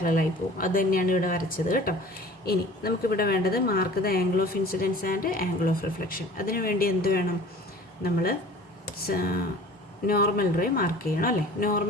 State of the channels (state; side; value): normal; both; correlation 0.45